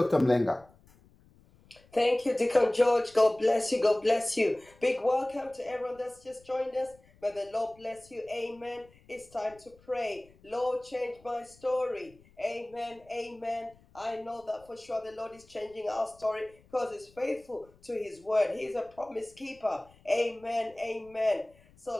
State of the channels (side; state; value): left; noise; rumble, 28 dB below the sound